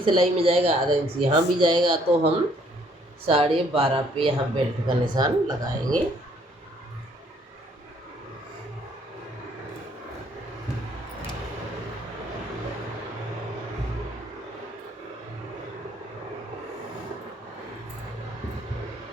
सिलाई में जाएगा, आधा इंच यहाँ भी जाएगा, तो हम 12.5 पे यहाँ बेल्ट का निशान लगाएंगे।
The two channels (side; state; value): both; normal; correlation 0.64